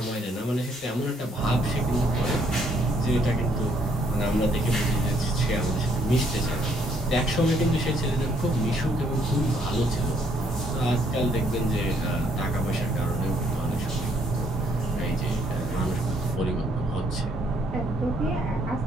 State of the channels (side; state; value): both; normal; correlation 0.68